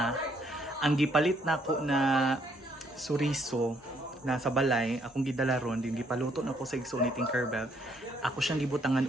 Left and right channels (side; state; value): both; normal; correlation 0.69